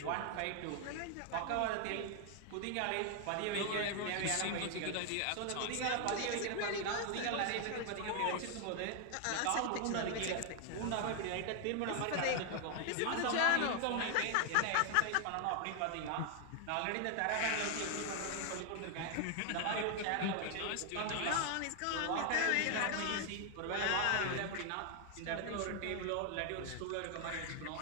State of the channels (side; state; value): both; different; correlation 0.00